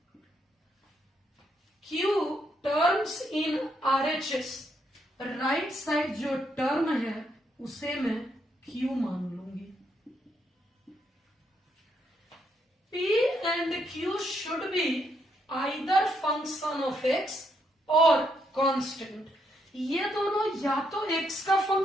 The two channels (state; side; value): normal; both; correlation 0.76